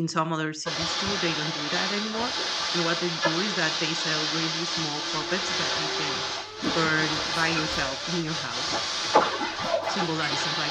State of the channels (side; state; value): both; identical; correlation 1.00